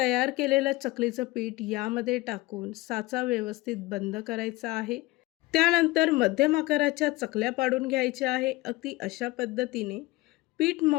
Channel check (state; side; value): quieter; right; 20.1 dB